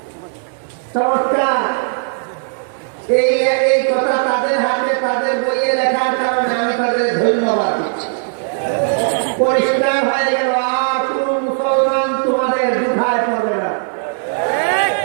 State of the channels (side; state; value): left; silent; 61 dB below the other